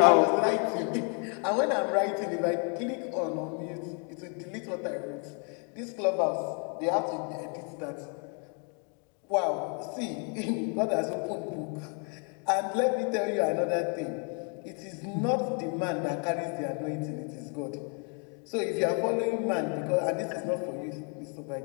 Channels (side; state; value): right; quieter; 39.5 dB